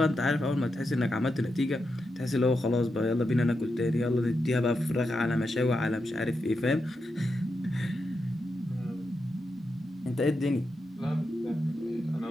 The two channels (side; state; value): both; normal; correlation 0.86